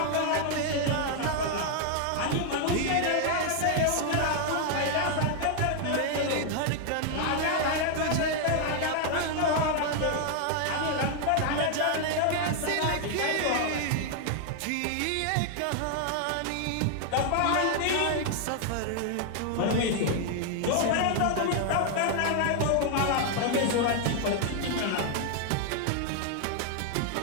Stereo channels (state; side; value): different; both; correlation 0.00